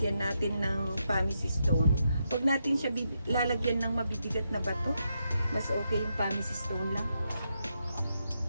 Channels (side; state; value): both; inverted; correlation -0.83